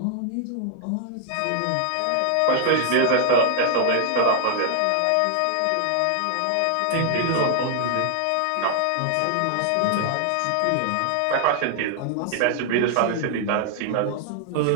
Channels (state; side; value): different; both; correlation 0.00